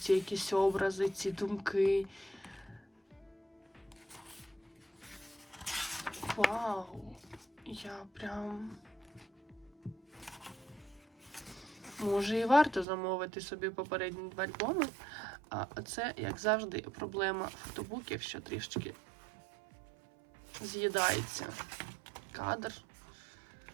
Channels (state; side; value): drops out; left; at 12.9 s